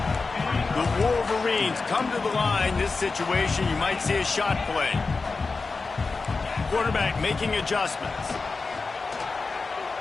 The Wolverines come to the line. This situation, you might see a shot play. Quarterback making adjustments.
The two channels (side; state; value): right; quieter; 4.2 dB